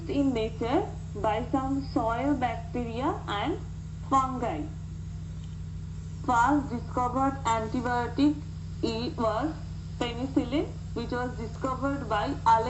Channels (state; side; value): identical; both; correlation 1.00